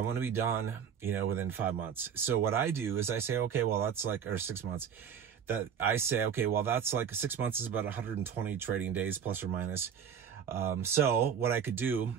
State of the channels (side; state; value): left; quieter; 7.8 dB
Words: want to be done, you know, within 5 months. So what I do is I say, okay, well, that's like, or 6 months, that I say, okay, well, that's like 6 months is about 120 trading days plus or minus. So what I could do